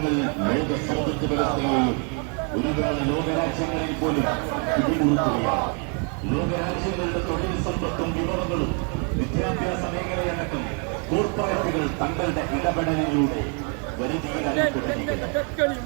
ലോക സമ്പദ് വ്യവസ്ഥയെയും ഒരുപാട് ലോകരാജ്യങ്ങളിൽ പോലും പിടിമുറുക്കുകയാണ്. ലോകരാജ്യങ്ങളുടെ തൊഴിൽ സമ്പത്തും വിഭവങ്ങളും വിദ്യാഭ്യാസ മേഖലയടക്കം കോർപ്പറേറ്റുകൾ തങ്ങളുടെ ഇടപെടലിലൂടെ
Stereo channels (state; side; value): quieter; left; 38.7 dB